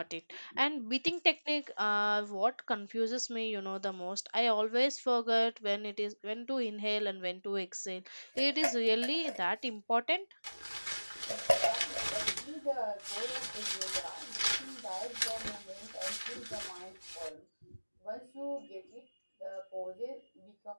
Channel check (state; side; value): inverted; both; correlation -1.00